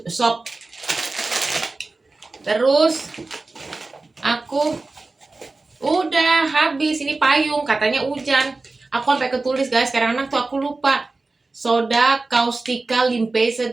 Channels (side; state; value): left; quieter; 3.5 dB